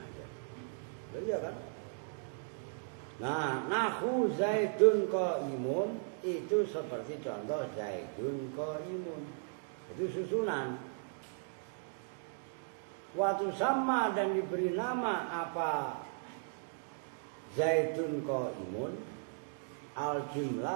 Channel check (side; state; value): left; silent; digital silence